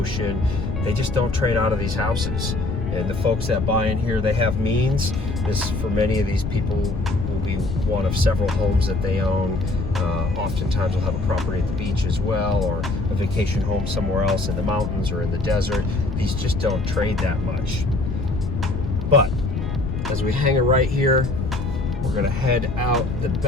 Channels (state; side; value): noise; left; rumble, 4 dB below the sound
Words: they just don't trade out of these houses. And the folks that buy in here, they have means. This, for many of these people, will be one of several homes that they own. Oftentimes they'll have a property at the beach as well, or a vacation home somewhere else in the mountains or in the desert. These just don't trade that much. But as we hang a right here, we're gonna head out the